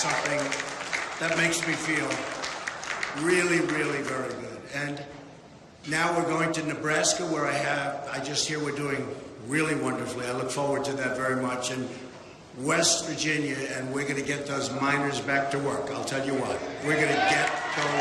something that makes me feel really, really very good. And now we're going to Nebraska, where I just hear we're doing really wonderfully. I look forward to that very much. And West Virginia, and we're going to get those miners back to work. I'll tell you what, we're going to get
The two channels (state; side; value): identical; both; correlation 1.00